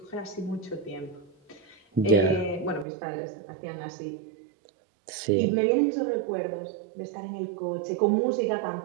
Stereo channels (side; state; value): left; drops out; at 2.9 s